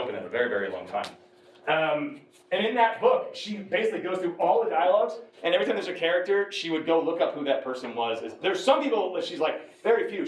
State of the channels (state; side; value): identical; both; correlation 1.00